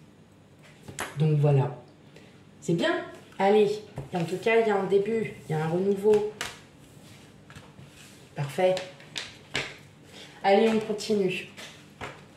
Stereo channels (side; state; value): both; identical; correlation 1.00